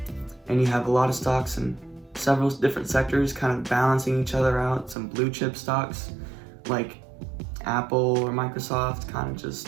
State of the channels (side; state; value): left; drops out; at 5.0 s